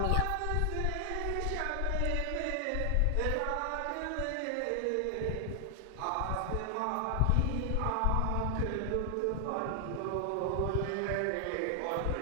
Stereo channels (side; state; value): both; different; correlation 0.00